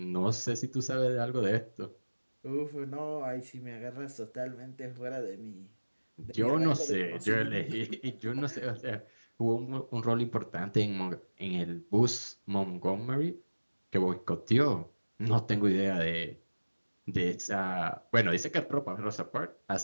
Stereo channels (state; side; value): inverted; both; correlation -1.00